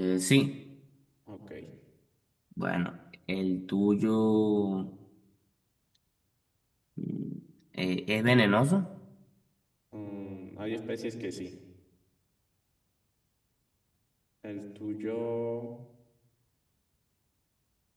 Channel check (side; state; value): both; identical; correlation 1.00